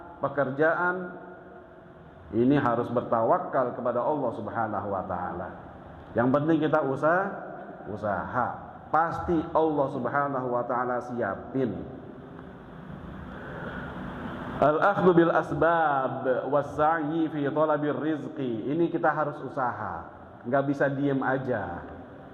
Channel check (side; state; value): both; identical; correlation 1.00